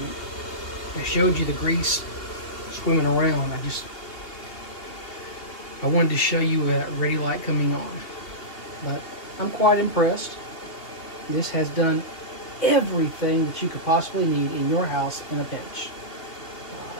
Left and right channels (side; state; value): right; late; 3.0 ms